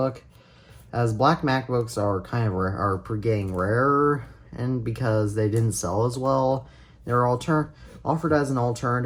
as black MacBooks are getting rarer, and because they didn't sell as well, they're offered as an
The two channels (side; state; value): both; identical; correlation 1.00